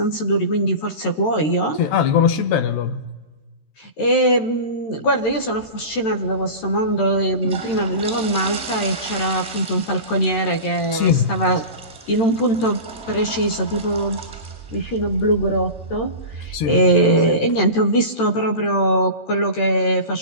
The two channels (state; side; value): late; right; 13 ms